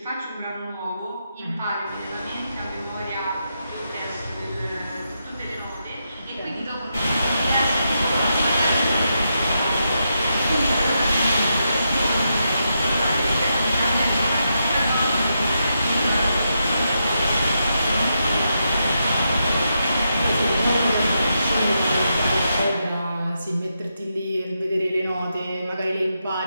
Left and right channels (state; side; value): inverted; both; correlation -0.84